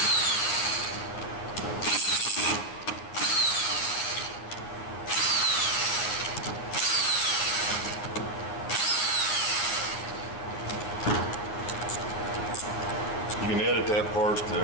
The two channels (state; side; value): late; right; 9.8 ms